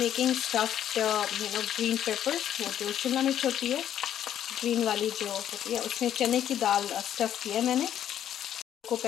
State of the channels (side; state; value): right; quieter; 10.5 dB